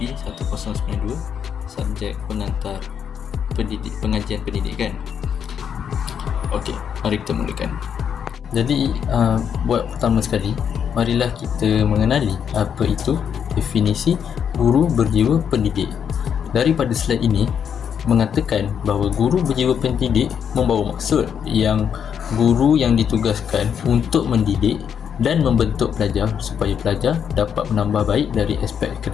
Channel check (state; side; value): quieter; right; 7.9 dB